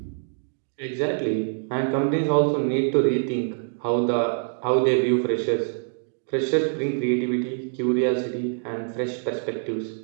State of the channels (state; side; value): silent; left; digital silence